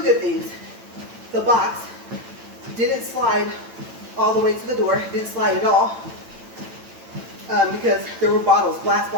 good things. The box didn't slide all the way to the door, didn't slide at all, because there were bottles, glass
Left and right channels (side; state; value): left; late; 8.9 ms